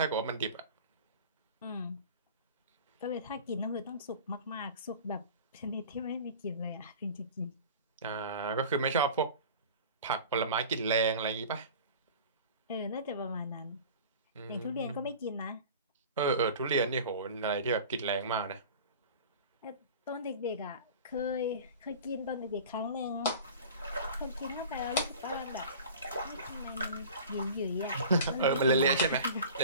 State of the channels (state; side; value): inverted; both; correlation -0.39